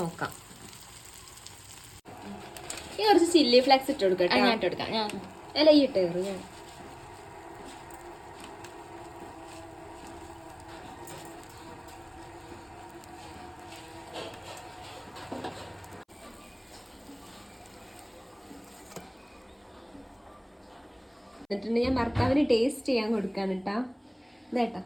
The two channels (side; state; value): both; identical; correlation 1.00